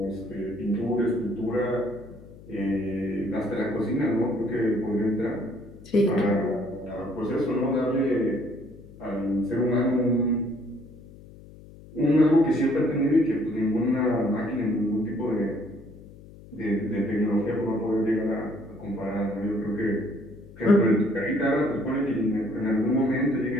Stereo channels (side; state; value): left; noise; hum, 19 dB below the sound